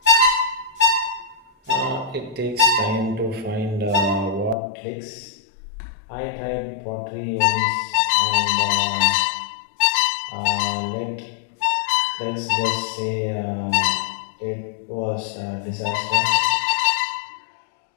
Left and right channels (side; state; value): right; drops out; at 4.5 s